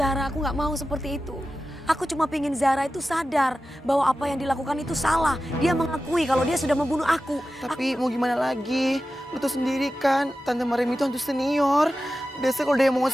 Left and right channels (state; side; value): normal; both; correlation 0.93